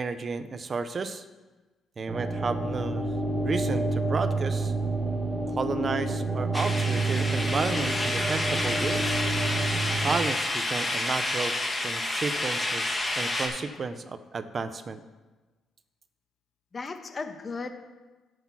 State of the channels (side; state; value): both; normal; correlation 0.84